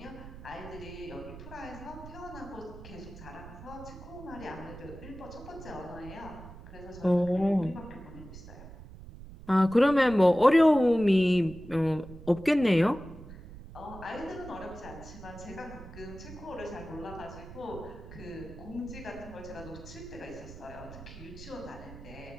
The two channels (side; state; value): right; noise; rumble, 15 dB below the sound